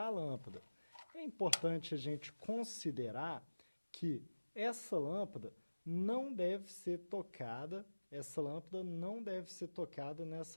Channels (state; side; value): inverted; both; correlation -1.00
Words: a lâmpada. É importante a gente considerar que essa lâmpada não deve ser tocada,